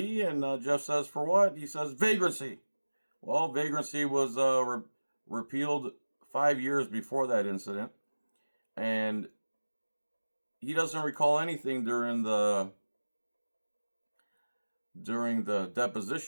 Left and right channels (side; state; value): both; inverted; correlation -1.00